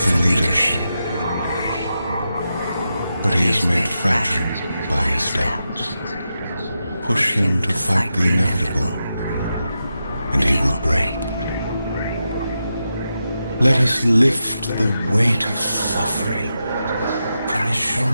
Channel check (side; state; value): both; inverted; correlation -0.88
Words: for leadership. But he is made fragile by his doubts. Push him to fight the inevitable, and he will break. Let us lift the weight of suffering from his